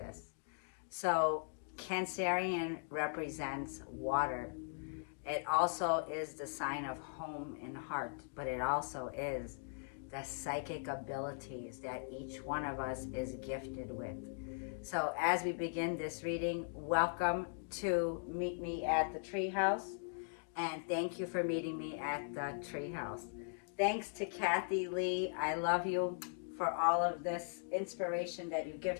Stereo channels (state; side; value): silent; right; digital silence